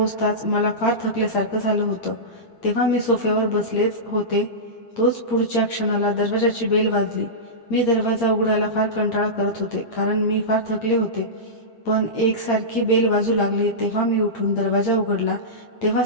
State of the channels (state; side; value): late; right; 8.7 ms